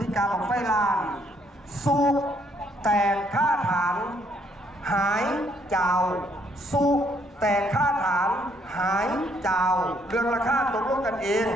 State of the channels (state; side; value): normal; both; correlation 0.69